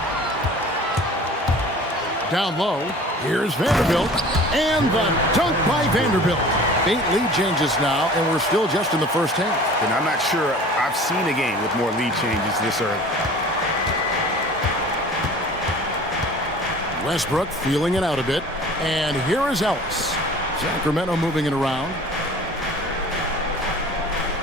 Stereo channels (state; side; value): normal; both; correlation 0.44